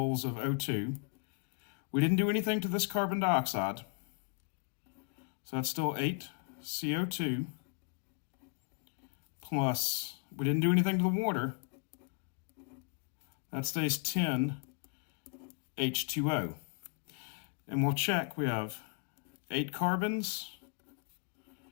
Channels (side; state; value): right; quieter; 39.5 dB